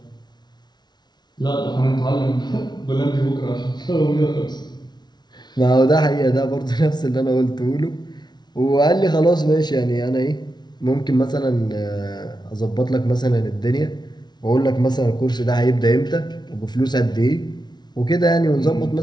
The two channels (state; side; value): late; right; 0.20 ms